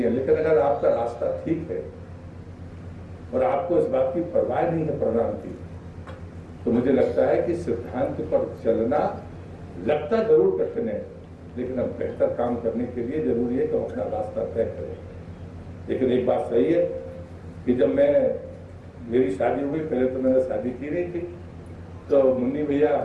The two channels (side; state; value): both; identical; correlation 1.00